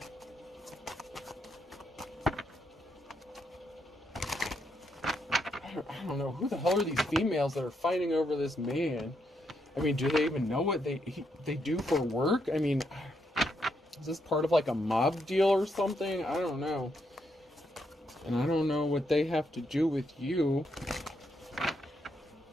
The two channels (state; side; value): normal; both; correlation 0.78